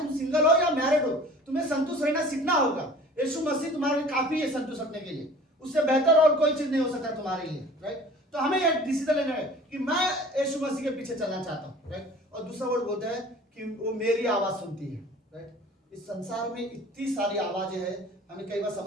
सिंगल हो या मैरिड हो, तुम्हें संतुष्ट रहना सीखना होगा। यीशु मसीह तुम्हारे लिए काफी है संतुष्ट रखने के लिए, उससे बेहतर और कोई चीज नहीं हो सकता तुम्हारे लिए, राइट। तो हमें यह डिसीजन लेना है कि मैं यीशु मसीह के पीछे चलना चाहता हूँ, राइट। और दूसरा वर्ड बोलता है कि वो मेरी आवाज सुनती है, राइट। इस संसार में इतनी सारी आवाजें हैं, हमें कई बार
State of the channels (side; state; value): both; normal; correlation 0.45